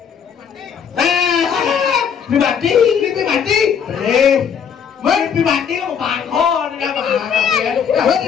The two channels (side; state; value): right; quieter; 7.4 dB